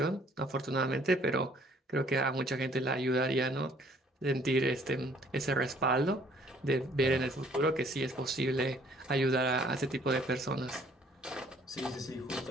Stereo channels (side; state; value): both; normal; correlation 0.60